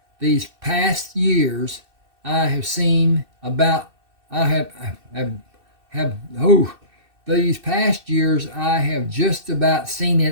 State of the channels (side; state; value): left; late; 2.6 ms